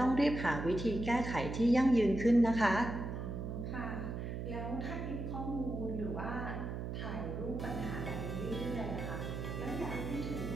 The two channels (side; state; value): right; noise; hum, 4 dB below the sound